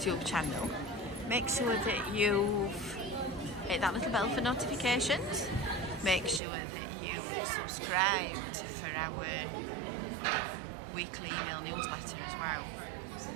channel. Make sure that you've hit that little bell for notifications. Make sure that you subscribed for our weekly email newsletter as well.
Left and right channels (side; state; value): left; drops out; at 6.4 s